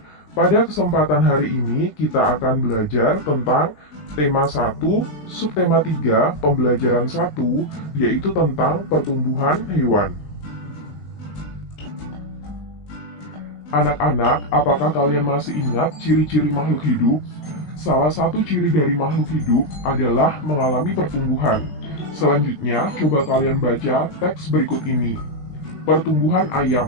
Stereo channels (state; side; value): late; right; 20 ms